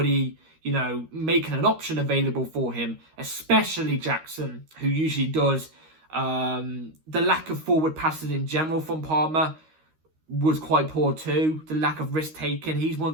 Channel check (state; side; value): late; left; 13 ms